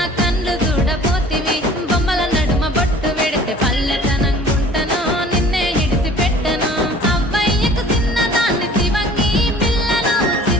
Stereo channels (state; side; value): normal; both; correlation 0.48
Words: కళ్ళు చూడపోతివి బొమ్మల నడుమ బొట్టు వెడితే పల్లెతనంగుంటను నిన్నే ఇడిసి పెట్టను అవ్వయ్యకు చిన్నదాన్ని శివంగి పిల్లను